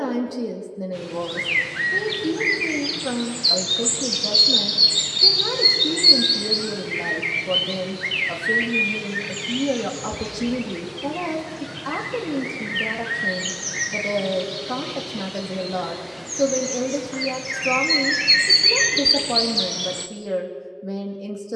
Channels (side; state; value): both; identical; correlation 1.00